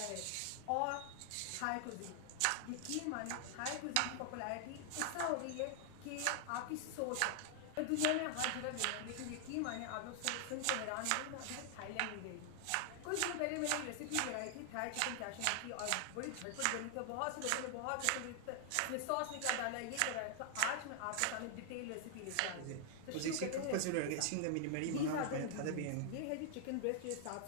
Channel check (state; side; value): different; both; correlation 0.00